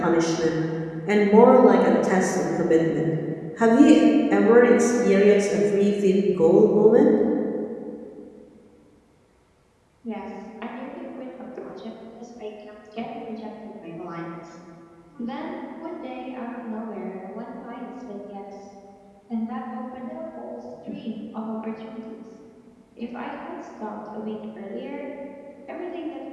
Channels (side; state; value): both; identical; correlation 1.00